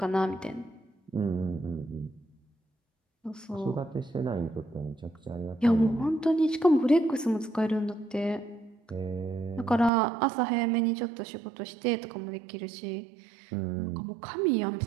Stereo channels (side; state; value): left; drops out; at 9.9 s